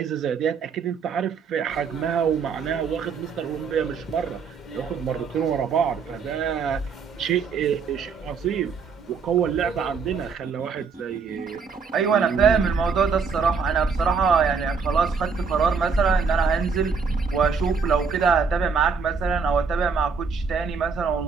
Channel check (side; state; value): left; quieter; 5.5 dB